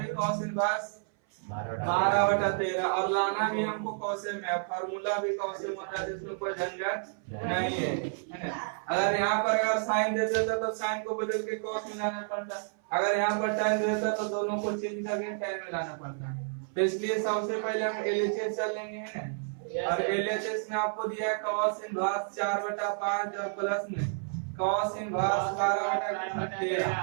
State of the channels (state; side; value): silent; left; 58 dB below the other